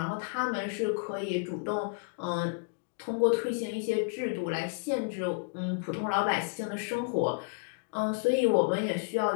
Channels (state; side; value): quieter; right; 33.0 dB